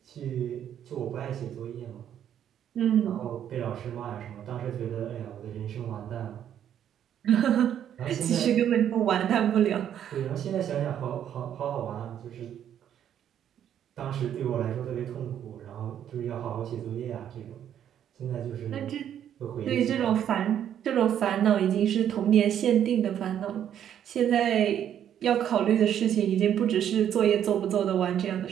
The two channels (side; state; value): left; quieter; 9.9 dB